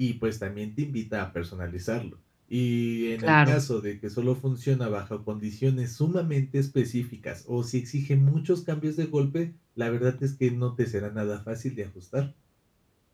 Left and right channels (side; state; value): both; identical; correlation 1.00